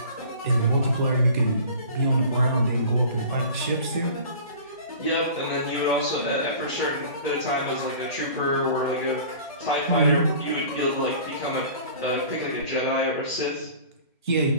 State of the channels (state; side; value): inverted; both; correlation -0.43